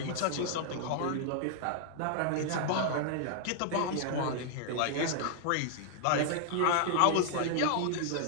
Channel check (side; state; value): both; different; correlation -0.01